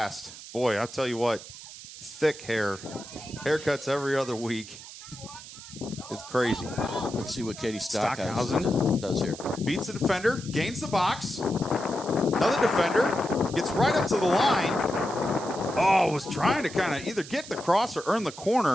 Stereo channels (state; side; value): noise; right; hiss, 14 dB below the sound